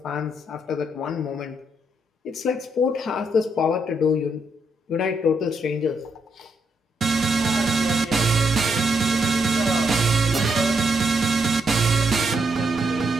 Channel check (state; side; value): normal; both; correlation 0.77